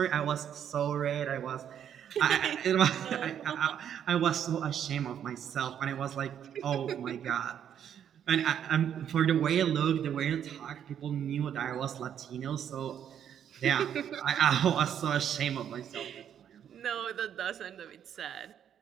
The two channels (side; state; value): left; quieter; 9.2 dB